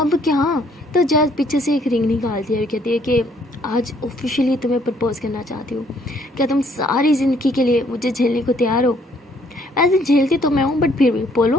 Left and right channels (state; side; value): normal; both; correlation 0.65